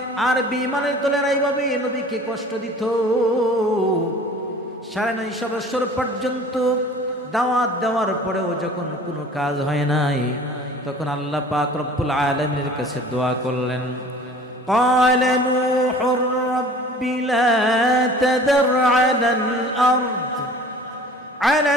আর বেঈমানের দলেরা এইভাবে নবীকে কষ্ট দিত। 9.5 বছর পর্যন্ত দাওয়াত দেওয়ার পরেও যখন কোনো কাজ হয় নাই, তখন আল্লাহ পাক রব্বুল আলামিনের কাছে দোয়া করলেন। قال نوح رب لا تذر على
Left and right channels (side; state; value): both; normal; correlation 0.46